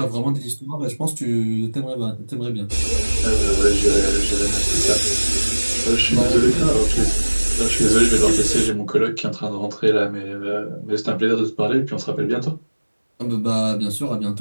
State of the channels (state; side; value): inverted; both; correlation -1.00